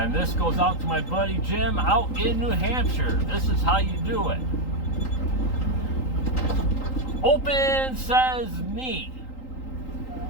this goes out to my buddy Jim out in New Hampshire. This is how you do it. Open says me.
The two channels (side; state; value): right; late; 3.8 ms